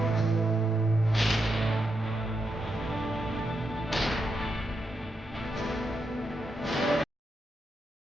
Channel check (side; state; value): both; normal; correlation 0.84